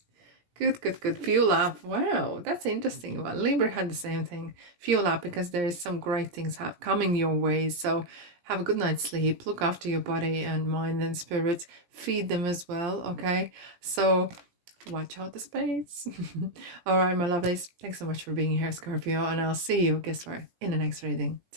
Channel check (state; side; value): late; left; 17 ms